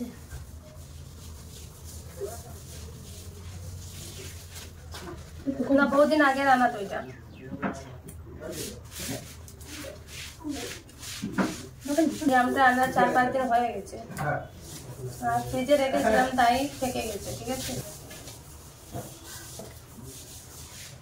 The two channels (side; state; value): both; identical; correlation 1.00